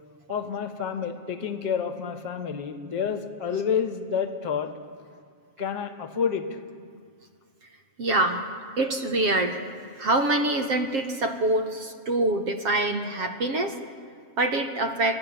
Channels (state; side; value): late; left; 7.5 ms